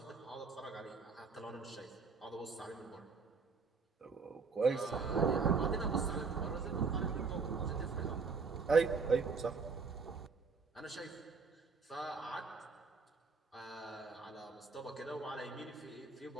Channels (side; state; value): left; quieter; 4.8 dB